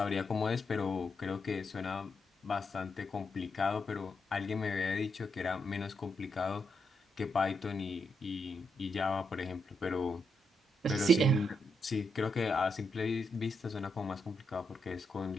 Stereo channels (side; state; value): both; normal; correlation 0.81